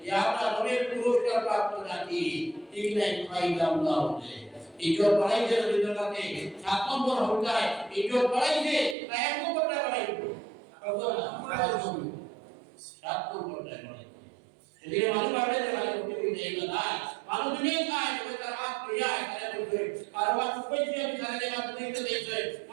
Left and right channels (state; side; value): drops out; left; at 9.0 s